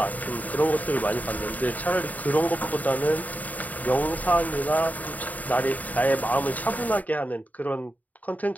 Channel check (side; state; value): right; late; 0.076 ms